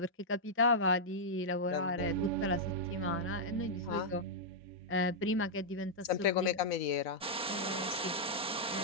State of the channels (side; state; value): both; normal; correlation -0.07